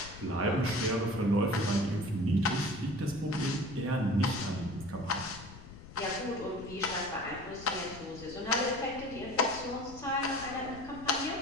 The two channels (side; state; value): left; noise; rumble, 15 dB below the sound